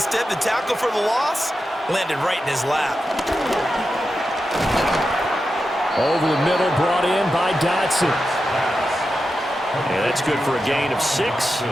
the tackle for the loss landed right in his lap. Over the middle, brought in by Dotson. And that's good for a gain of 6.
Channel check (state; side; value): normal; both; correlation 0.90